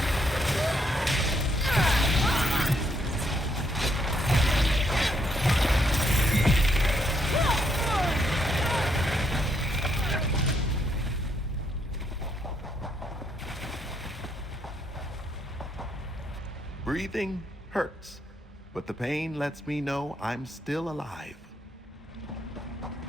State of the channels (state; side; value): normal; both; correlation 0.74